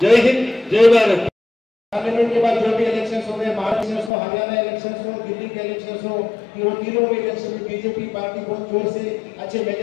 జై హింద్, జై భారత్. पार्लियामेंट के बाद जो भी इलेक्शंस हो गए, महाराष्ट्र इलेक्शंस हो, हरियाणा इलेक्शंस हो, दिल्ली के इलेक्शंस हो, वो तीनों में इलेक्शन में बीजेपी पार्टी बहुत जोर से अच्छे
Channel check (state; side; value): drops out; right; at 4.1 s